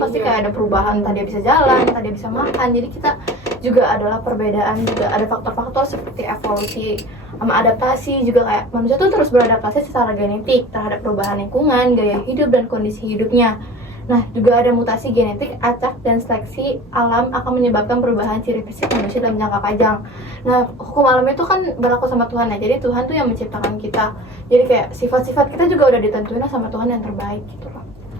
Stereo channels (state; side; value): normal; both; correlation 0.39